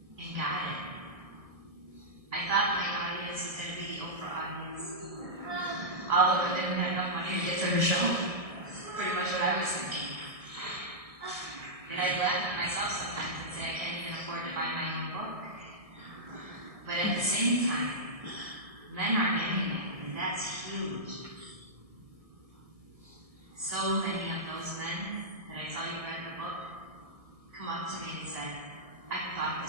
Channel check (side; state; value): left; late; 1.6 ms